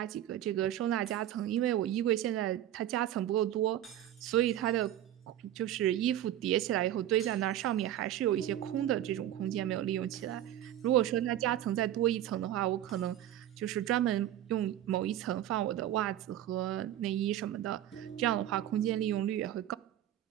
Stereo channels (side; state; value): left; quieter; 12.1 dB